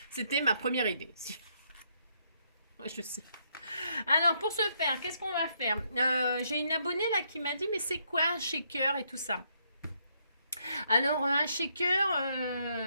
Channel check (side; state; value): both; inverted; correlation -0.74